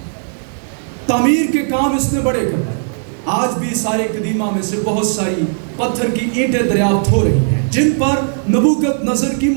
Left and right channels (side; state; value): left; silent; digital silence